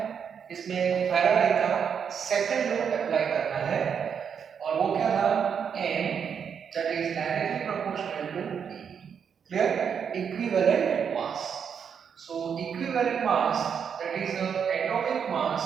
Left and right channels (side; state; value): left; quieter; 7.2 dB